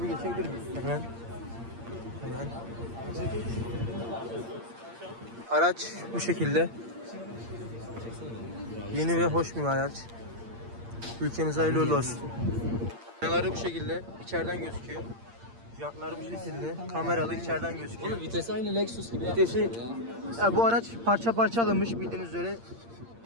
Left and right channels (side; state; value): left; late; 8.7 ms